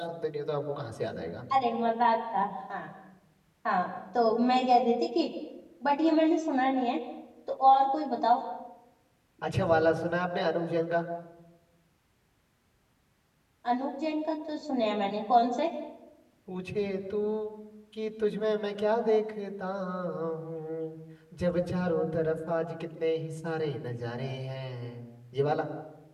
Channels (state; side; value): identical; both; correlation 1.00